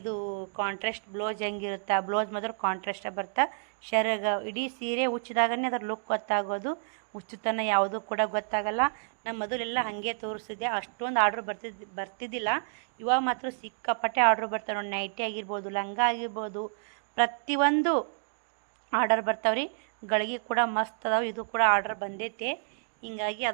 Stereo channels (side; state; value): left; silent; digital silence